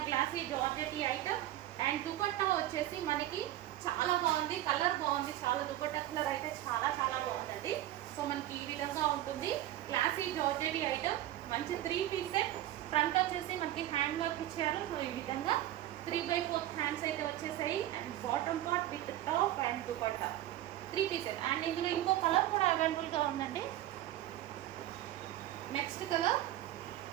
glossy georgette item. And dupatta వచ్చేసి మనకి చాలా బాగుంది, కలర్ బాగుంది, చాలా దుపట్టా కలర్ అయితే చాలా చాలా బాగుందండి. సో మనకి ఈ విధంగా ఉంటుంది గ్లాసీ జార్జెట్ ఐటమ్. మంచి 3 పీస్ సెట్. ఫ్రంట్ వచ్చేసి మనకి హ్యాండ్ వర్క్ ఇచ్చారు. సో ఈ విధంగా 3/4 హ్యాండ్స్ అయితే వచ్చేసాయి and bottom part with top and dupatta 3 piece set. And ఇందులో ఇంకో కలర్ కూడా అవైలబుల్గా ఉందండి. Next colour.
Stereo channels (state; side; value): quieter; left; 14.0 dB